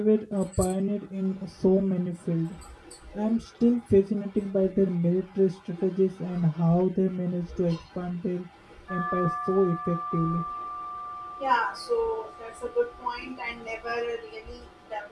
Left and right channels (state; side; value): identical; both; correlation 1.00